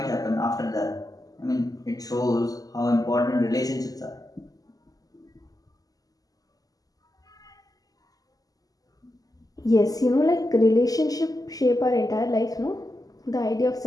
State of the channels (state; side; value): late; right; 0.17 ms